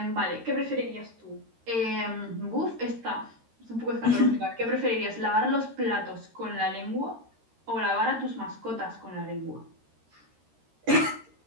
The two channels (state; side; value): late; left; 13 ms